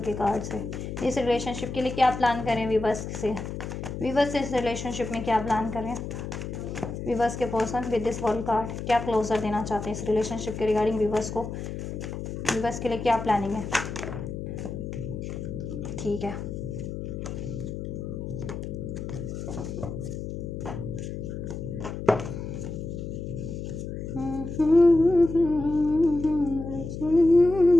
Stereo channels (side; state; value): left; noise; hum, 6 dB below the sound